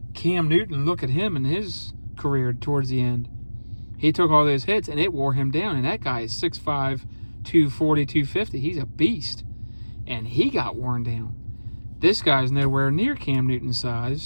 Cam Newton, look at him in his career towards the end. He took all those hits and it wore him down, and that guy is 6'5", 240, 250. He's a beast, and he got worn down. This guy's nowhere near Cam Newton's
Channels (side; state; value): both; inverted; correlation -1.00